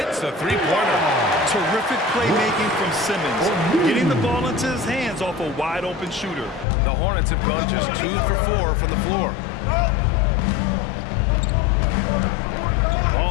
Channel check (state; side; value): drops out; right; at 6.7 s